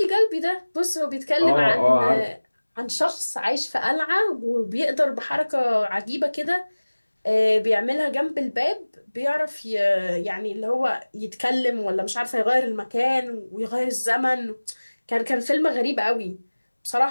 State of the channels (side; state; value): both; inverted; correlation -1.00